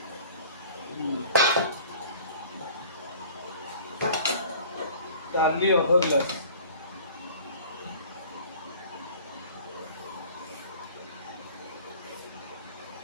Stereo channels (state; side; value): inverted; both; correlation -0.47